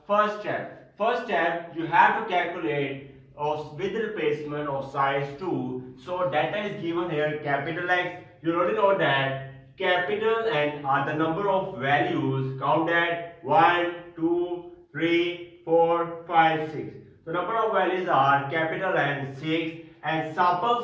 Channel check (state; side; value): identical; both; correlation 1.00